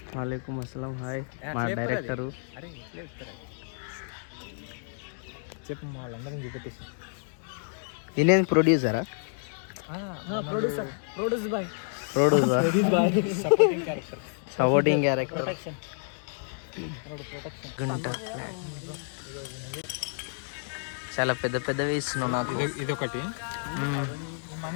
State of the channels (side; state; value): right; silent; digital silence